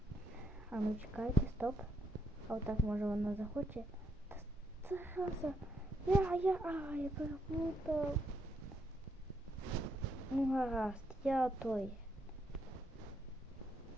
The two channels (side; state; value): both; normal; correlation 0.76